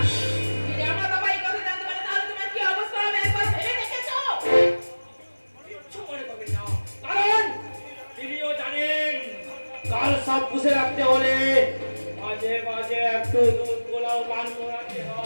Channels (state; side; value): inverted; both; correlation -1.00